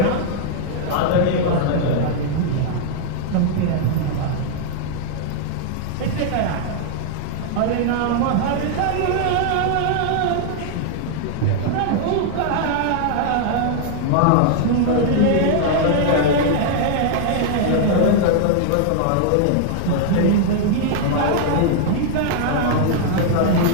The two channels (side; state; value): both; different; correlation -0.01